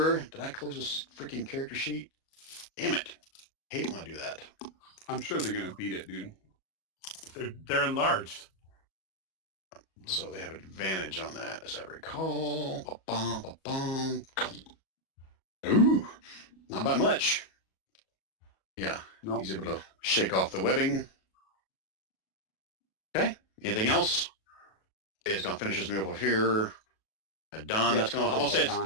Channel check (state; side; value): late; right; 37 ms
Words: Did I close this freaking character sheet? Damn it. Hate when I do that. I'm sure they're going to beat it, dude. They're enlarged. So they have advantage on that, as I recall. Ba-bum, ba-bum. Ooh, not by much. Yeah, Nope. He's able to shake off the webbing. Okay, anything else? It's going to finish his move over here. Don, Yeah, that's going to, I'm going to say